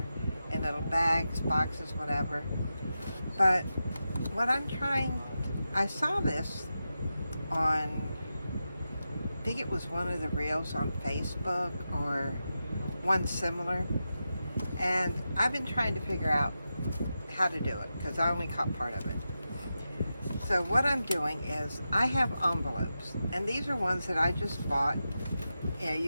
in little bags, boxes, whatever. But what I saw this on, I think it was one of the reels on Facebook or one similar, and I've been trying to figure out how to do it because I only caught part of it. So what I'm doing is I have envelopes, and these are ones that I just bought.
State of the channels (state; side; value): inverted; both; correlation -0.90